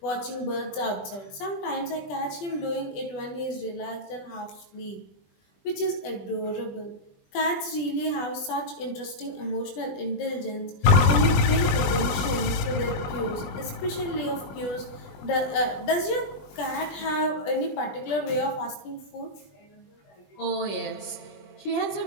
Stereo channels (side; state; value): right; late; 20 ms